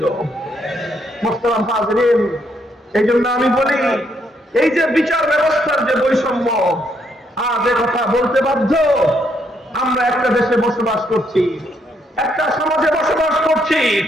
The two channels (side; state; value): both; normal; correlation 0.74